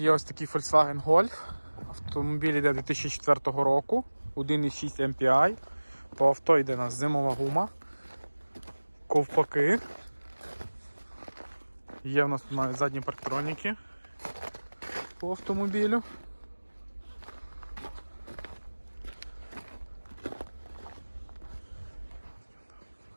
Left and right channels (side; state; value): both; inverted; correlation -1.00